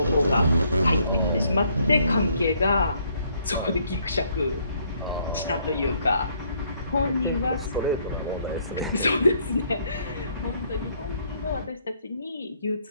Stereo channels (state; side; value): inverted; both; correlation -0.67